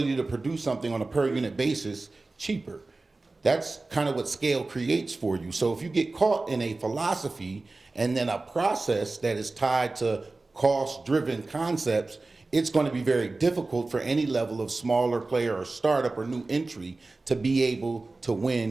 to produce something on a per unit basis cheaper. That's kind of what scale creates for you. So if you get caught in a philosophy and then a process that is tied to cost-driven concepts, it's going to be very difficult for any level of smaller player or startup or new entry to be able to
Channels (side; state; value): left; quieter; 3.4 dB